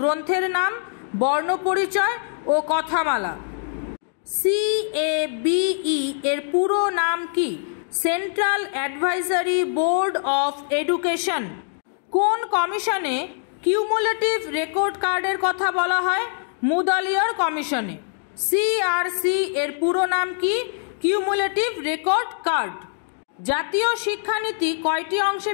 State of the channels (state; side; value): silent; right; digital silence